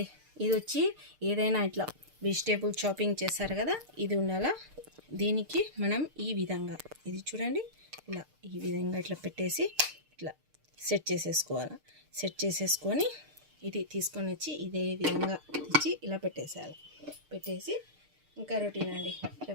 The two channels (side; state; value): left; late; 6.6 ms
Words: ఇది వచ్చి ఏదైనా ఇట్లా వెజిటేబుల్ చాపింగ్ చేస్తారు కదా, ఇది ఉండాలా. దీనికి మనం ఈ విధంగా ఇది చూడండి, ఇలా ఈ విధంగా ఇట్లా పెట్టేసి ఇట్లా సెట్ చేసేసుకోవాలి. సెట్ చేసేసుకొని ఇది తీసుకొని వచ్చి ఇదే విధంగా తెచ్చి ఇలా పెట్టేసేయాలి. పెట్టేసి ఇంకా రొటీన్ అండి, ఇట్లా